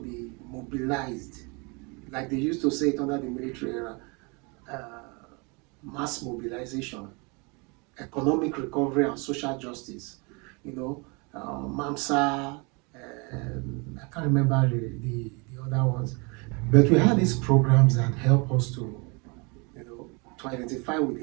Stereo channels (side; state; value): left; quieter; 30.6 dB